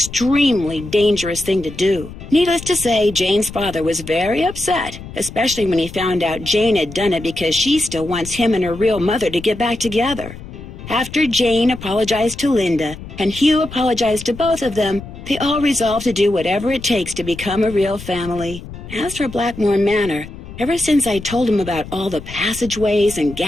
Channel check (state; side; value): noise; left; rumble, 13 dB below the sound